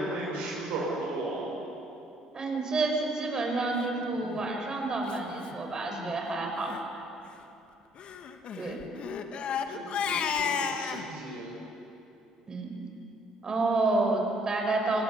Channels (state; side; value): normal; both; correlation 0.63